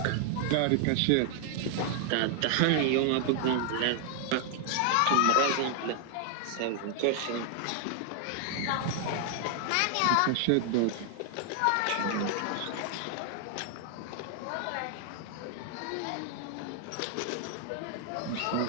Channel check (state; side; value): different; both; correlation 0.00